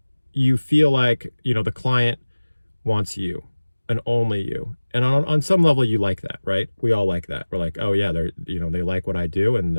you feel like the client wants you and only you. And on some level you like that, right? We all like that. We're like, oh yeah, they like what I do and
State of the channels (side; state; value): both; inverted; correlation -1.00